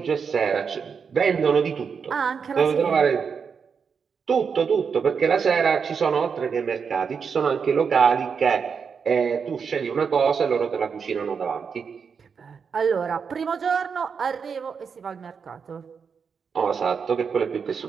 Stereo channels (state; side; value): quieter; left; 6.1 dB